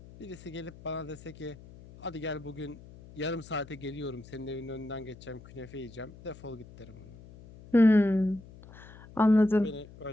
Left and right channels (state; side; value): noise; left; hum, 19 dB below the sound